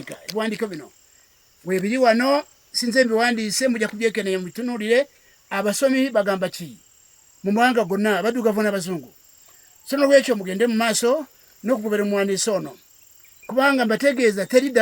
Ebiwandiiko bino weebiri wano, sinze mbiwandiise, mujja kubyekenneenya mubitunuulire. Abasomi bagamba ki mu mawanga gonna, abaddugavu n'abazungu. So n'olwekyo mugende mu maaso n'okugobera omuwandiisi ono, kubanga mbategeeza teri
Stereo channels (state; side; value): identical; both; correlation 1.00